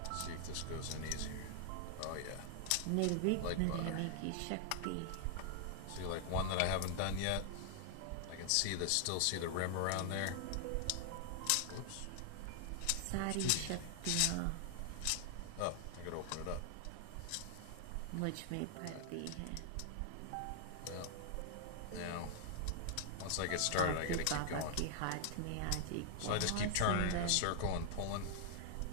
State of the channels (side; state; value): both; different; correlation 0.00